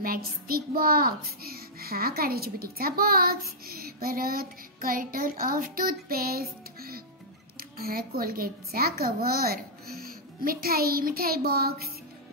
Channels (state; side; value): normal; both; correlation -0.10